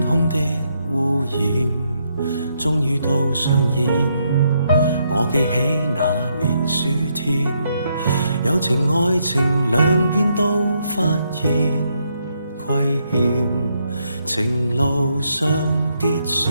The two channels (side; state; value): both; inverted; correlation -0.76